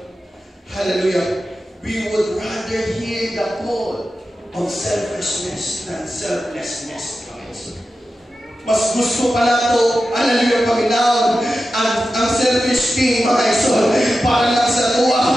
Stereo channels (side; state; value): both; normal; correlation 0.92